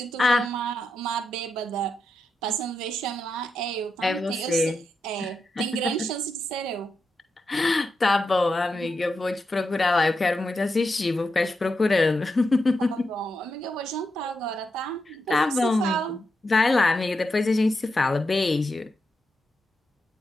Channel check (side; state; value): both; normal; correlation 0.86